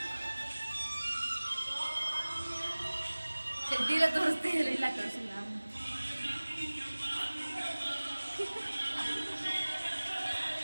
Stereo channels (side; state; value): both; inverted; correlation -1.00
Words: ಚಡ್ಡಿಲ್ಲ ತೋರಿಸ್ತೀವಿ. ಇಲ್ಲ ತೋರಿಸಿಲ್ಲ.